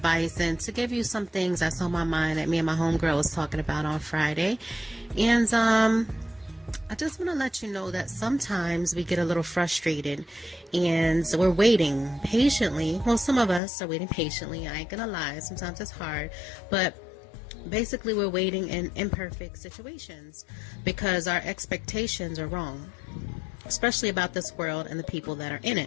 and to give you some things that's on my mind that me and my homegirl was talking about on Friday. And I just want to let you know that sometimes we get a little frustrated and we're waiting patiently. Well, some of us are waiting patiently. I ain't gonna lie. Sometimes it's hard, but basically we're waiting in imperfect situations because our expectations are wrong, especially about this world and the people that are in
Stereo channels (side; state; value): right; drops out; at 13.6 s